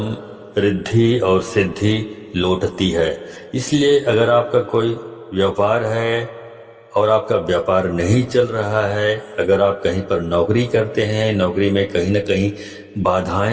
रिद्धि और सिद्धि लौटती है। इसलिए अगर आपका कोई व्यापार है और आपका व्यापार नहीं चल रहा है, अगर आप कहीं पर नौकरी करते हैं, नौकरी में कहीं न कहीं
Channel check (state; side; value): identical; both; correlation 1.00